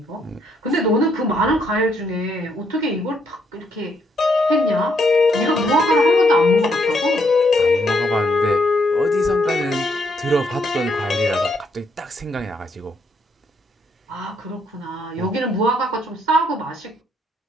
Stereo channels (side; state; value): both; normal; correlation 0.73